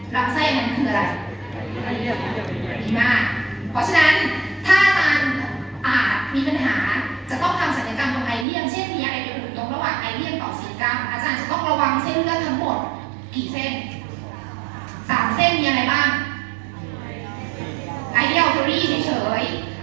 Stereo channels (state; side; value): drops out; left; at 8.5 s